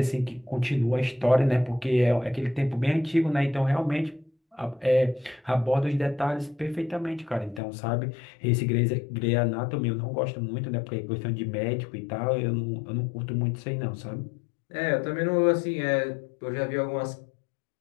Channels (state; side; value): drops out; right; at 7.6 s